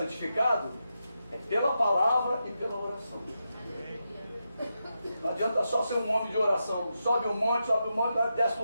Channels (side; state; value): both; inverted; correlation -0.87